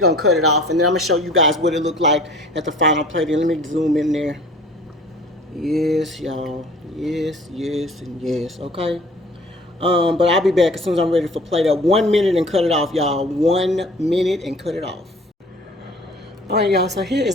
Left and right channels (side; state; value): both; normal; correlation 0.48